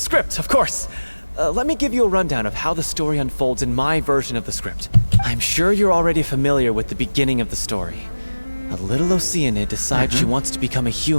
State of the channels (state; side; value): inverted; both; correlation -1.00